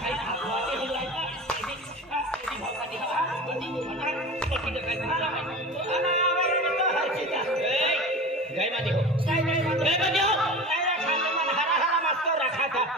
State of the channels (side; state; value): both; normal; correlation 0.33